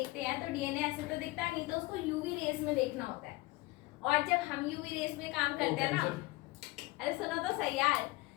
हैं, तो डीएनए ऐसे तो दिखता नहीं, तो उसको यूवी रेस में देखना होता है। और जब हम यूवी रेस में काम करते हैं ना, अरे सुनो तो सही यार,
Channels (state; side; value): quieter; right; 21.0 dB